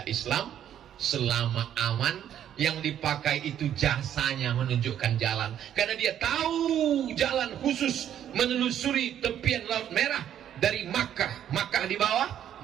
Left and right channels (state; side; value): quieter; left; 10.3 dB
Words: Islam selama aman. Yang dipakai itu jasanya menunjukkan jalan, karena dia tahu jalan khusus menelusuri tepian Laut Merah dari Makkah. Makkah di bawah,